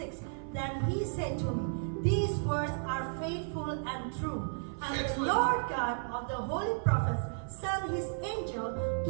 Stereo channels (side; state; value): left; silent; 55 dB below the other